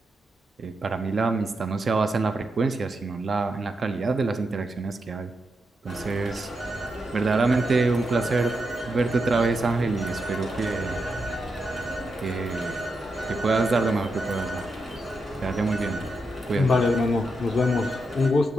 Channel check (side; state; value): both; normal; correlation 0.85